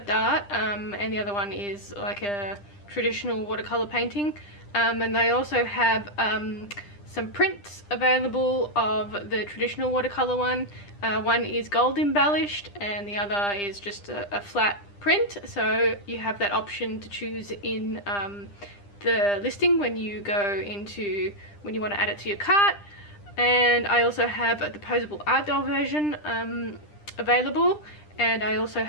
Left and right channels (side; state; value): right; late; 10 ms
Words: art and the other one is like a traditional watercolor painting. And I also have some prints available of the traditional watercolor one. One is gold embellished and the other is just a flat print, so you have that option to choose in the listing when you want to add it to your cart. And I also have the posable art doll version available, and I also